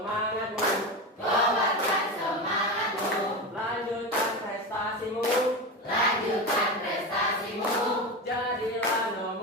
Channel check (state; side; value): normal; both; correlation 0.21